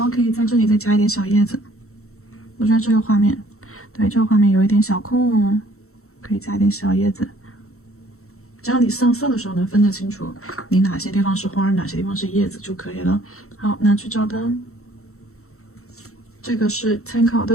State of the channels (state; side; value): late; right; 0.63 ms